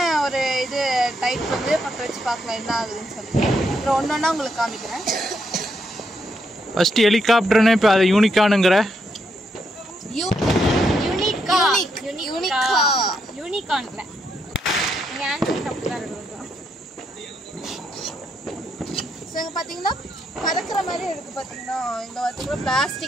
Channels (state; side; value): normal; both; correlation 0.78